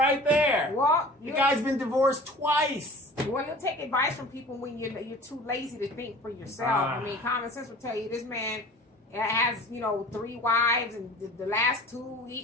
there. Well, the guy's been divorced twice. Well, you'll take advice from people when you're too lazy to think for yourself. I mean, common sense will tell you this man has 3 wives, and the last 2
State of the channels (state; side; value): normal; both; correlation 0.42